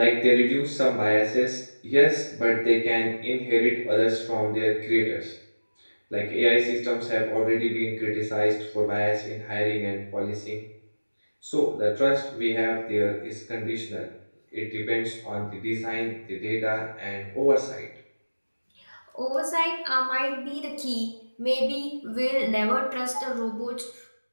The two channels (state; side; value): inverted; both; correlation -1.00